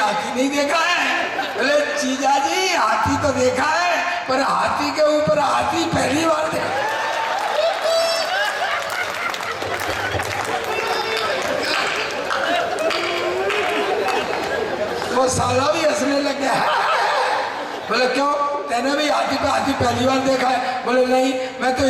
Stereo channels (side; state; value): both; identical; correlation 1.00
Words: नहीं देखा है? बोले जीजा जी हाथी तो देखा है, पर हाथी के ऊपर हाथी पहली बार देखा। वो साला भी हंसने लग गया। बोले क्यों, तेने भी हाथी पे हाथी पहली बार देखा है? बोले नहीं, मैं तो